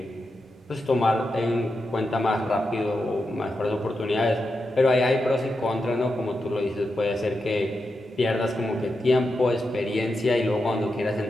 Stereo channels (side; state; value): both; normal; correlation 0.87